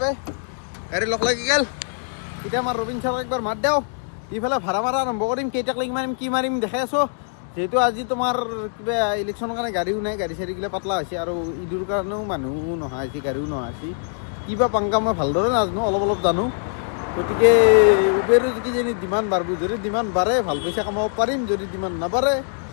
পে গাড়ী লগ লাগি গ'ল এতিয়া আমাৰ ৰবীন ছাৰক একবাৰ মাত দিওঁ ইফালে ভাড়া মাৰা আৰম্ভ কৰিম কেইটাক লাগি মাৰিম কি মাৰিম দেখাই আছোঁ যিহেতু আজি তোমাৰ কিবা ইলেকশ্যনৰ কাৰণে গাড়ীও নাই গাড়ী চাড়ীগিলা পাতলা হৈছে আৰু ঈদৰ কাৰণেও মানুহ নহা হৈছে গাড়ীও নহা হৈছে কিবা পাংকা মই ভালদৰে নাজানো অলপ জানো গতিকে উবেৰো কিজানি ডিমাণ্ড বাঢ়িব যদি ডিমাণ্ড বাঢ়ে ভাল পইচা কামাব পাৰিম যদি ডিমাণ্ড নাবাঢ়ে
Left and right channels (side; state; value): right; silent; digital silence